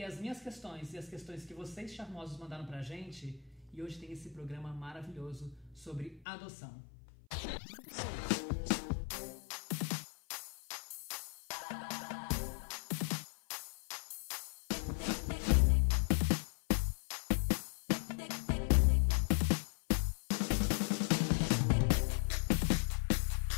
as minhas questões e as questões que vocês charmosos mandaram pra gente, e hoje tem esse programa maravilhoso sobre adoção.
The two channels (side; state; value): right; drops out; at 6.2 s